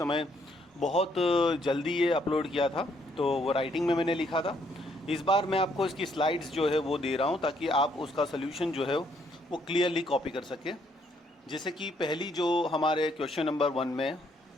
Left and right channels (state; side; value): normal; both; correlation 0.70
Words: बहुत जल्दी ये अपलोड किया था तो वो राइटिंग में मैंने लिखा था। इस बार मैं आपको इसकी स्लाइड्स जो है वो दे रहा हूँ ताकि आप उसका सोल्यूशन जो है वो क्लियरली कॉपी कर सके। जैसे कि पहली जो हमारे क्वेश्चन नंबर 1 में